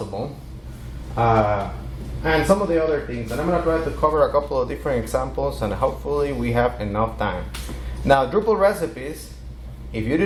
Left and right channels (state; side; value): identical; both; correlation 1.00